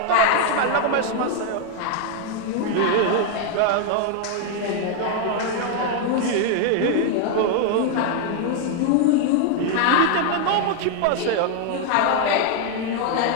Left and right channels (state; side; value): different; both; correlation 0.00